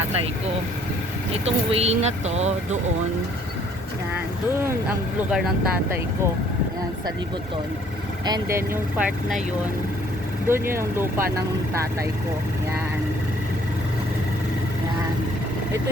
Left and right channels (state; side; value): normal; both; correlation 0.61